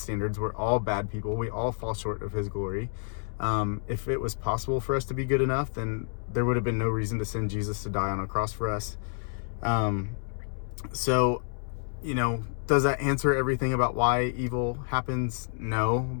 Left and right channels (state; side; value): silent; right; digital silence